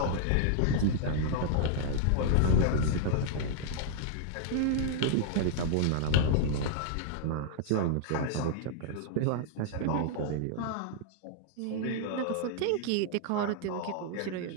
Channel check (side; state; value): both; different; correlation -0.01